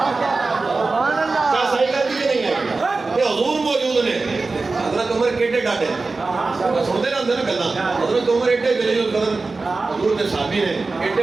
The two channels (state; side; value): quieter; left; 3.8 dB